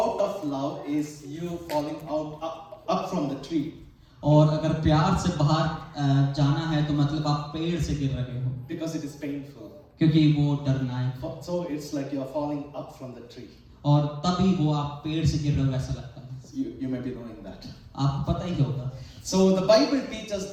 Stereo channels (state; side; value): identical; both; correlation 1.00